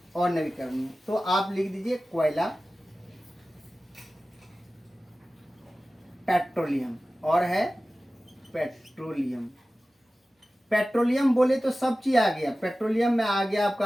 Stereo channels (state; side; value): normal; both; correlation 0.96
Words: अनवीकरणीय। तो आप लिख दीजिए कोयला, पेट्रोलियम, और है पेट्रोलियम। पेट्रोलियम बोले तो सब चीज आ गया। पेट्रोलियम में आ गया आपका